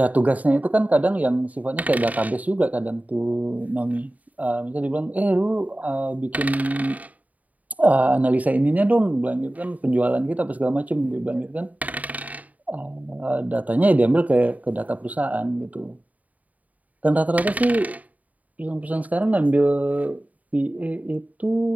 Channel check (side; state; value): left; late; 0.073 ms